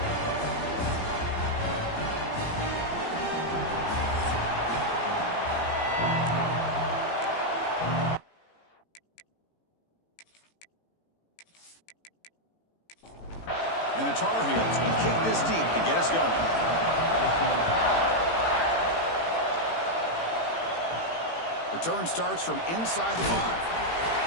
And the Tar Heels will kick this deep to get us going. Return starts from inside the 5.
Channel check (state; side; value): late; right; 18 ms